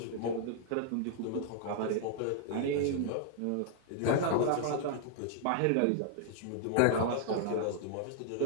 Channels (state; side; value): different; both; correlation -0.01